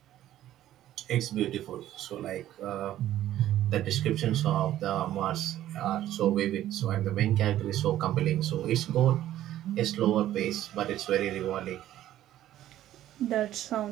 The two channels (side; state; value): left; quieter; 13.0 dB